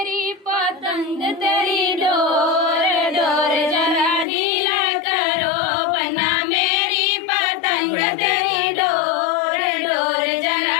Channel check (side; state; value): right; drops out; at 4.2 s